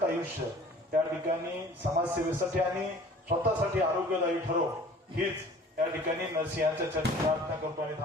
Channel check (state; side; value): normal; both; correlation 0.48